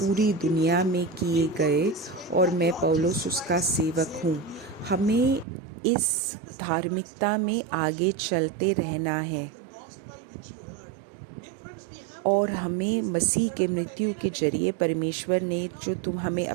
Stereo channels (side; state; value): left; drops out; at 5.5 s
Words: दुनिया में किए गए और मैं पौलुस उसका सेवक हूँ। हमें इस धार्मिकता में आगे चलते रहना है और हमें मसीह के मृत्यु के जरिए परमेश्वर ने जो हमें